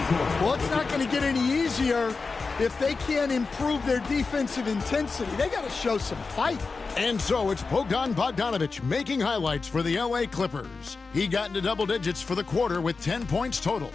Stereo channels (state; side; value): quieter; right; 4.3 dB